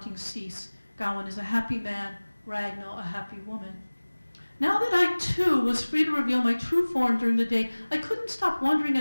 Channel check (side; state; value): both; inverted; correlation -1.00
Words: cease. Gawain is a happy man, Ragnall a happy woman. Now that I, too, was free to reveal my true form during the day, I couldn't stop wondering